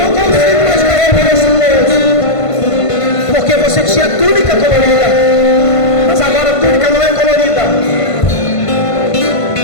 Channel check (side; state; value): right; late; 1.5 ms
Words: consigo mais carregar esse peso. Porque você tinha túnica colorida. Mas agora a túnica não é colorida.